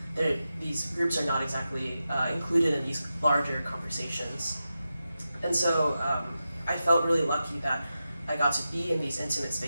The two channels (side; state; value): both; inverted; correlation -0.91